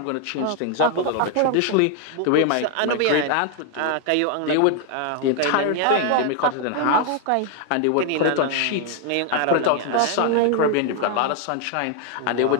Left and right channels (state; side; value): different; both; correlation 0.00